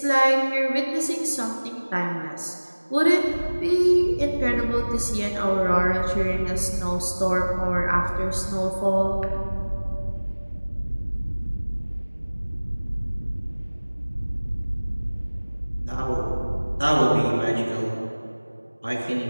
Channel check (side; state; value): both; inverted; correlation -1.00